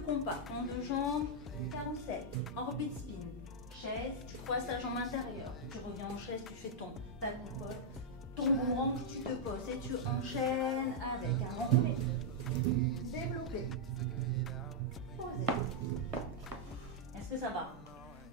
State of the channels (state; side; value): normal; both; correlation -0.05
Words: on deux jambes, carrousel, orbite spin. Chaise, tu croises ta jambe intérieure. Tu reviens en chaise, tu fais ta coupole. Ton boomerang, tu te poses et tu enchaînes avec un enroulé, développé, posé. Est-ce que ça va?